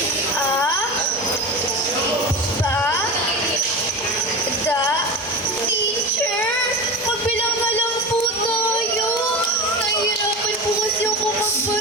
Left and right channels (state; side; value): normal; both; correlation 0.26